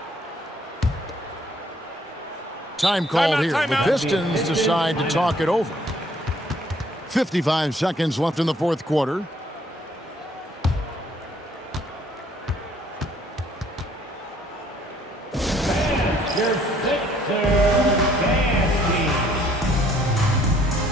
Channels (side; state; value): both; normal; correlation 0.62